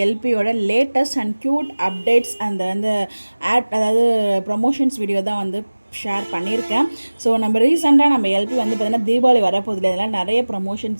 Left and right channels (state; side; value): inverted; both; correlation -1.00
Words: எல்பியோட லேட்டஸ்ட் அண்ட் க்யூட் அப்டேட்ஸ் அந்த அதாவது ப்ரொமோஷன்ஸ் வீடியோ தான் ஷேர் பண்ணியிருக்கேன். ஸோ நம்ம ரீசெண்டாக நம்ம எல்பி பார்த்திங்கன்னா தீபாவளி வரப்போதில்லை, இதெல்லாம் நிறைய